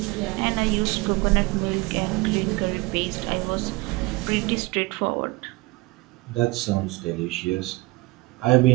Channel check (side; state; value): left; quieter; 22.8 dB